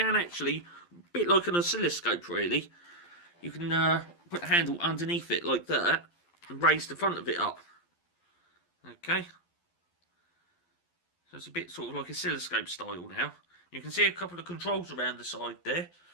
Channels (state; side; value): late; right; 11 ms